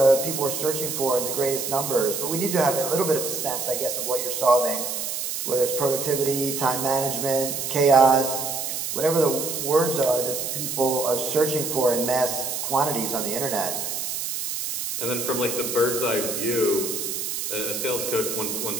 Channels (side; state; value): right; noise; hiss, 3 dB below the sound